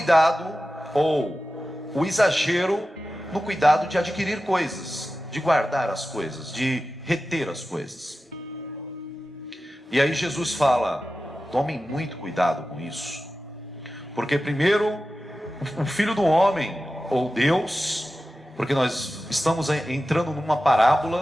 ou o exagero no cuidado de adquirir coisas, de guardar as coisas, de reter as coisas. E aí Jesus fala: tomem muito cuidado com isso, porque primeiro o Filho do Homem, ou Deus, porque nós estamos entrando numa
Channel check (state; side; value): normal; both; correlation 0.94